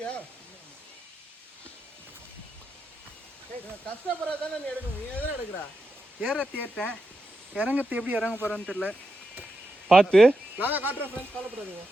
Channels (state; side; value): normal; both; correlation 0.87